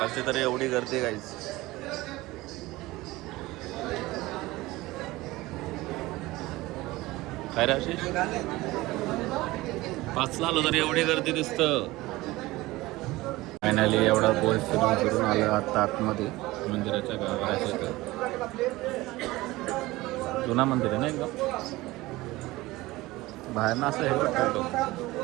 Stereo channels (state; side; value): quieter; left; 19.4 dB